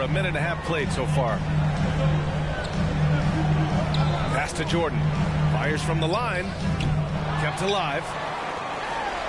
a minute and a half played so far. Pass to Jordan. Fires from the line. Kept alive.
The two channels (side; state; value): both; identical; correlation 1.00